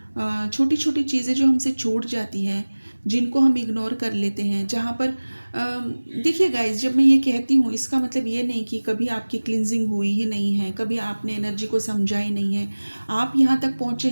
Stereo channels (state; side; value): inverted; both; correlation -1.00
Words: छोटी छोटी चीज़ें जो हमसे छूट जाती हैं, जिनको हम इग्नोर कर लेते हैं, जहाँ पर देखिए गाइस, जब मैं ये कहती हूँ इसका मतलब ये नहीं कि कभी आपकी क्लिनजिंग हुई ही नहीं है, कभी आपने एनर्जी को समझा ही नहीं है। आप यहाँ तक पहुँचे